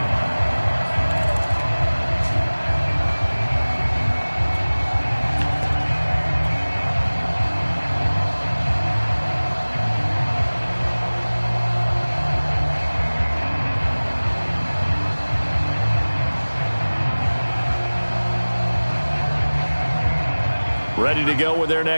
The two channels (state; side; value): inverted; both; correlation -1.00